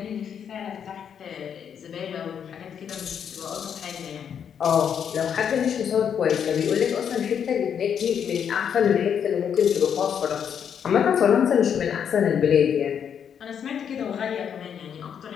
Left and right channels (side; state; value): right; quieter; 8.0 dB